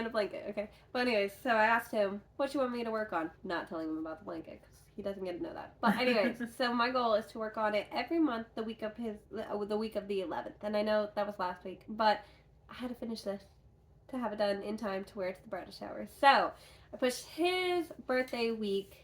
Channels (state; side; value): identical; both; correlation 1.00